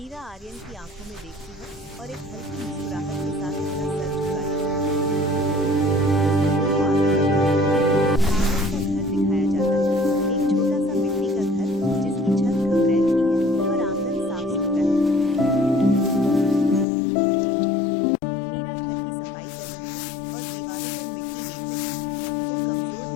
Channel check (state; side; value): drops out; right; at 16.9 s